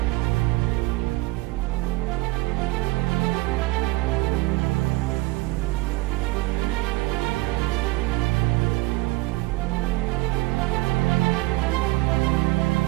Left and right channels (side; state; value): left; quieter; 20.7 dB